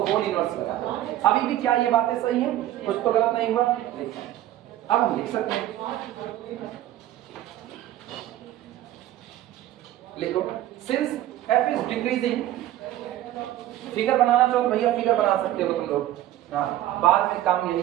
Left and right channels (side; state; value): left; quieter; 13.6 dB